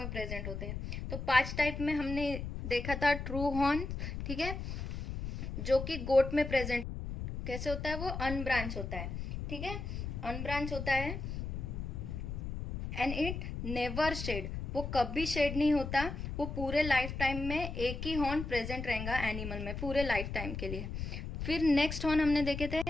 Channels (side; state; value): left; noise; rumble, 5 dB below the sound